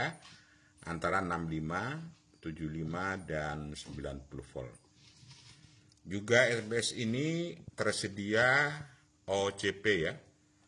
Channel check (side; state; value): both; identical; correlation 1.00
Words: antara 65, 75, dan 90 volt. Juga SMPS ini tersedia OCP ya.